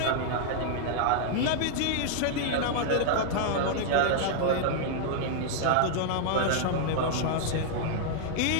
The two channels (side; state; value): both; different; correlation -0.01